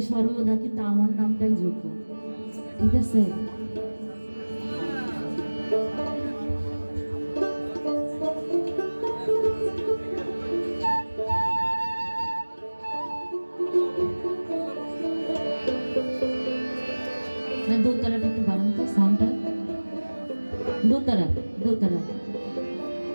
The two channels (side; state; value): both; inverted; correlation -1.00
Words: সর্বদা কিন্তু আমার নামটাই যোগ্য। ঠিক আছে? দোতারাটা একটু বাড়ান তো সাউন্ডটা। দোতারা দোতারা।